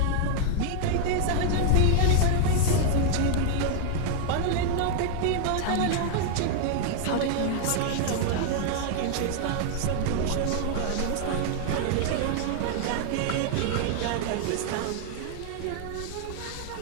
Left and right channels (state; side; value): different; both; correlation 0.00